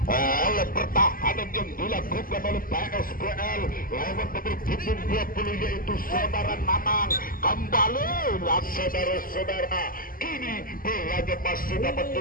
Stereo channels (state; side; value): late; right; 0.41 ms